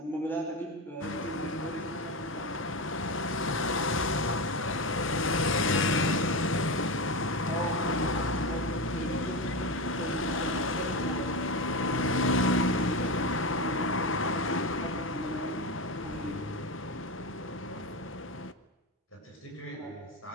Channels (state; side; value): normal; both; correlation 0.17